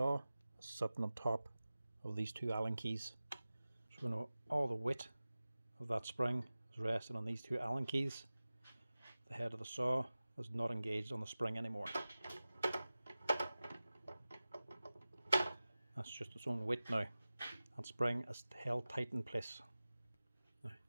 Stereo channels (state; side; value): inverted; both; correlation -0.97